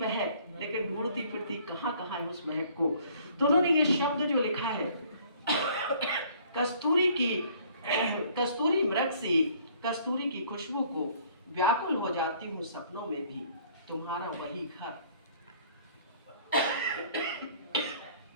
लेकिन ढूंढती फिरती कहाँ कहाँ है उस महक को। तो उन्होंने ये शब्द जो लिखा है, कस्तूरी मृग सी, कस्तूरी की खुशबू को व्याकुल हो जाती हूँ सपनों में भी, तुम्हारा वही घर,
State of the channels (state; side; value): inverted; both; correlation -0.58